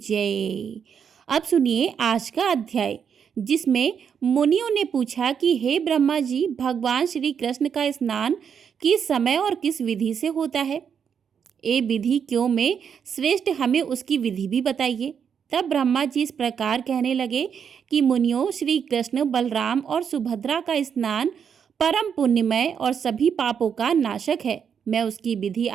अब सुनिए आज का अध्याय, जिसमें मुनियों ने पूछा कि हे ब्रह्मा जी, भगवान श्री कृष्ण का स्नान किस समय और किस विधि से होता है? ये विधि क्यों में श्रेष्ठ, हमें उसकी विधि भी बताइए। तब ब्रह्मा जी इस प्रकार कहने लगे कि मुनियों, श्री कृष्ण, बलराम और सुभद्रा का स्नान परम पुण्यमय और सभी पापों का नाशक है। मैं उसकी विधि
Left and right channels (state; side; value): quieter; left; 7.4 dB